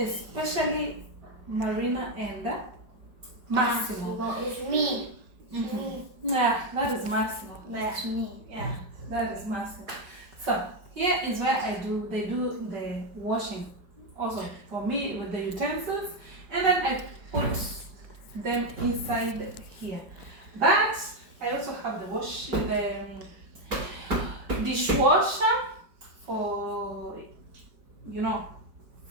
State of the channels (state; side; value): late; left; 5.2 ms